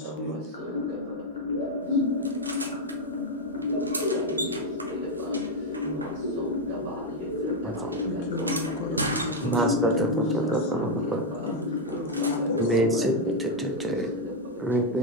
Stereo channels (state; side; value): normal; both; correlation 0.03